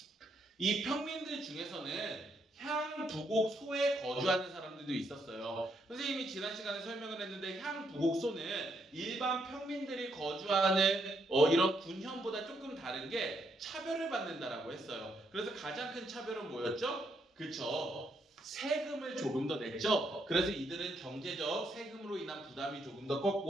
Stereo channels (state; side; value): normal; both; correlation 0.76